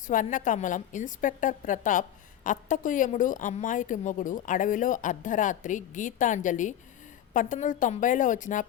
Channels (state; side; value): quieter; right; 11.1 dB